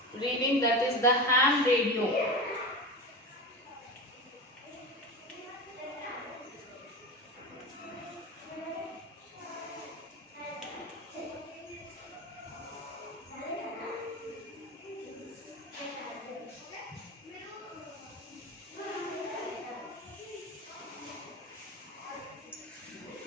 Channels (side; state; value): both; normal; correlation 0.26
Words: Reading, that is the ham radio.